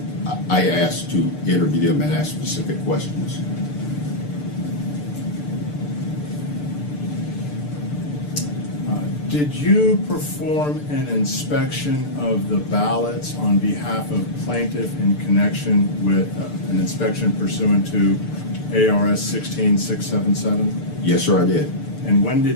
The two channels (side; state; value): right; late; 6.8 ms